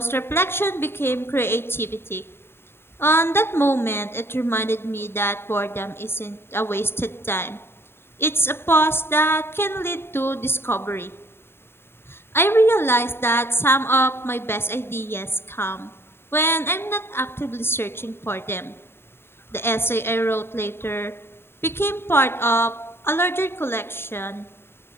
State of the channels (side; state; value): right; late; 0.11 ms